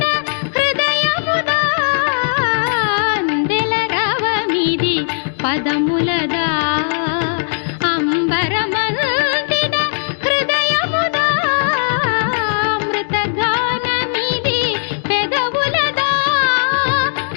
హృదయముదా అందెల రవమిది పదములదా అంబరమల్తిన హృదయముదా అమృతగానమిది పెదవులదా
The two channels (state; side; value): silent; right; digital silence